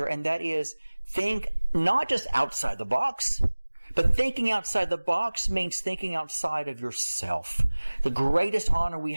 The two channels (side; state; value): both; inverted; correlation -1.00